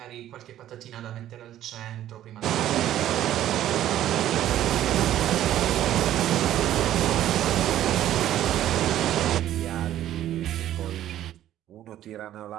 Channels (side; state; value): left; quieter; 12.4 dB